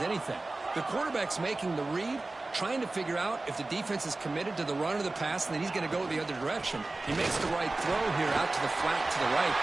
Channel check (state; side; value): quieter; left; 3.1 dB